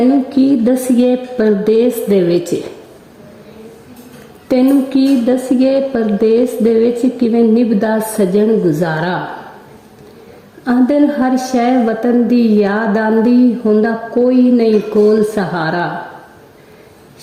ਕੀ ਦਸੀਏ ਪਰਦੇਸ ਦੇ ਵਿੱਚ, ਤੈਨੂੰ ਕੀ ਦਸੀਏ ਪਰਦੇਸ ਦੇ ਵਿੱਚ ਕਿਵੇਂ ਨਿਭਦਾ ਸਜਣ ਗੁਜ਼ਾਰਾ। ਆਂਦਨ ਹਰ ਸ਼ੈ ਵਤਨ ਦੀ ਯਾਦ ਆਂਦੀ ਹੁੰਦਾ ਕੋਈ ਨਹੀਂ ਕੋਲ ਸਹਾਰਾ।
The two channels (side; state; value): both; identical; correlation 1.00